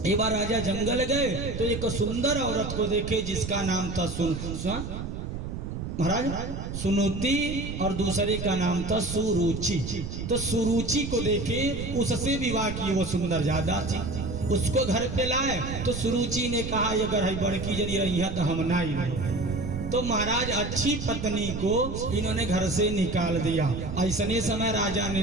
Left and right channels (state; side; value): noise; right; rumble, 6 dB below the sound